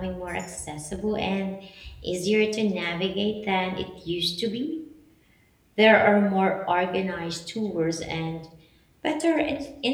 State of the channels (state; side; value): identical; both; correlation 1.00